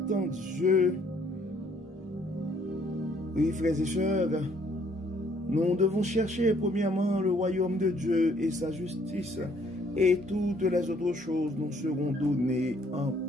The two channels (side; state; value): both; normal; correlation 0.64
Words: en Dieu. Oui, frères et sœurs, nous devons chercher premièrement le royaume de Dieu et sa justice, et toutes les autres choses nous seront données en